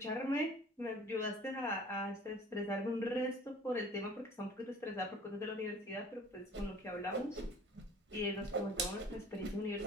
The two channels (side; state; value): both; normal; correlation 0.48